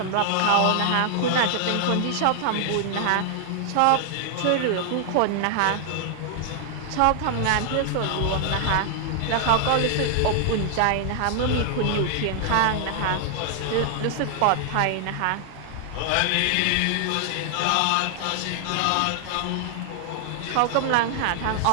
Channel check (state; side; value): different; both; correlation 0.00